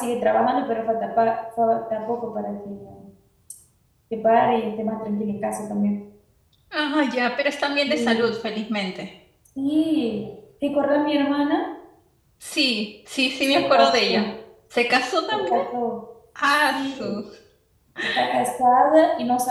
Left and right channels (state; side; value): identical; both; correlation 1.00